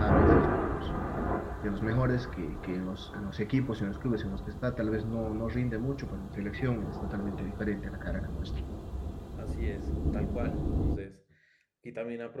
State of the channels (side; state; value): both; identical; correlation 1.00